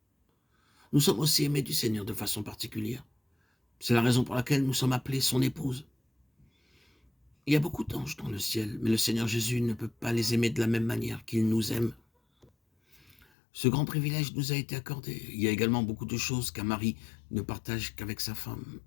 Nous sommes aussi aimés du Seigneur de façon particulière. C'est la raison pour laquelle nous sommes appelés son épouse. Il y a beaucoup d'anges dans le ciel, mais le Seigneur Jésus ne peut pas les aimer de la même manière qu'il nous aime. Ce grand privilège nous a été accordé. Il y a également beaucoup de choses qu'un mari ne partage qu'avec sa femme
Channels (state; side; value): drops out; right; at 13.2 s